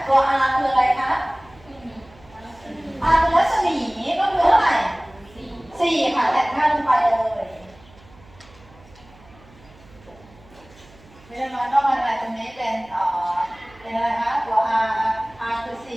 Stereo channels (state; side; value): noise; right; hum, 25 dB below the sound